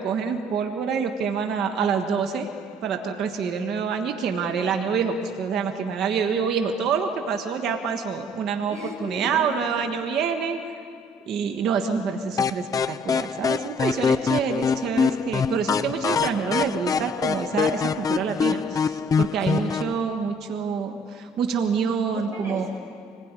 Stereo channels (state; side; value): normal; both; correlation 0.58